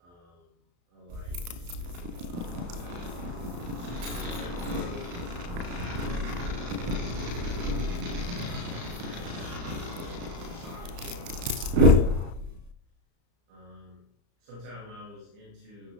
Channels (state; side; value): late; left; 34 ms